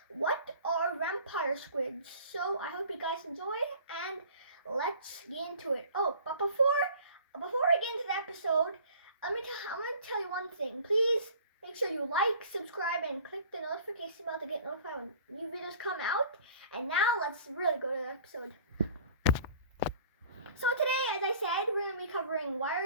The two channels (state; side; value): inverted; both; correlation -0.47